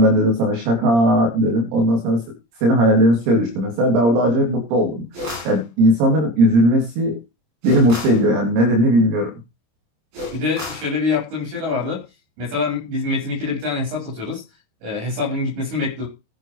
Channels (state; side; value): late; left; 26 ms